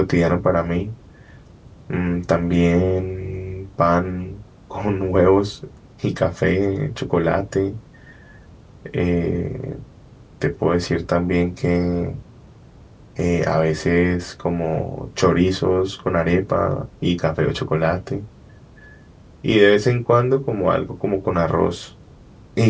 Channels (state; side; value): identical; both; correlation 1.00